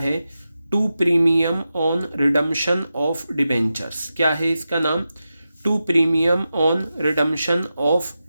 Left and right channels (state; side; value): inverted; both; correlation -0.91